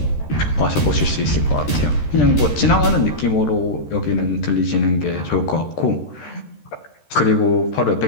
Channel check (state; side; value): late; right; 13 ms